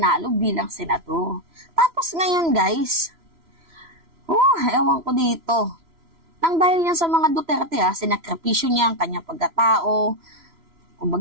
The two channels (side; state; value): left; late; 3.0 ms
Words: bilang senador. Tapos ngayon guys, ewan ko dito. Nang dahil yan sa mga Duterte, sinakripisyo niya ang kanyang pagkatao.